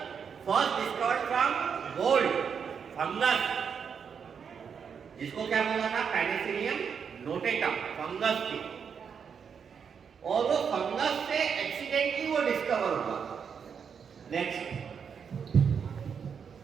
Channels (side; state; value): left; quieter; 6.8 dB